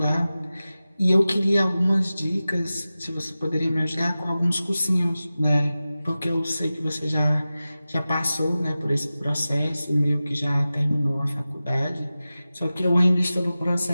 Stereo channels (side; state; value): both; inverted; correlation -0.95